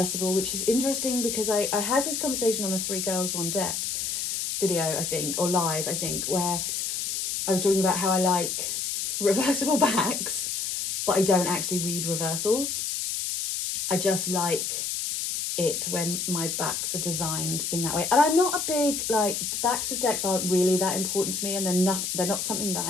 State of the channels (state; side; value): noise; left; hiss, 2 dB below the sound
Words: which is interesting because I had this conversation on a 3 Girls 1 Deck video, I think, or live, I think, where I was talking about how I like reversible backs, but I don't actually read reversals. I just like it when my backs are designed in that way. And I'm not a big, like, the backs of decks aren't really that important to me, and they're not something that